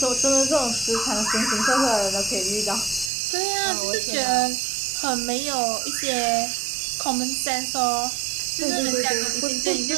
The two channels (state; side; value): drops out; left; at 3.1 s